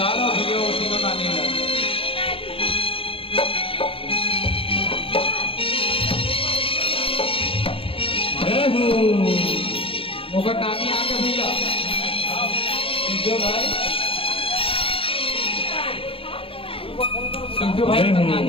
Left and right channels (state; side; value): late; right; 0.27 ms